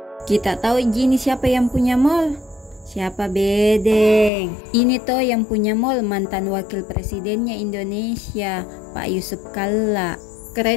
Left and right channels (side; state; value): right; drops out; at 4.3 s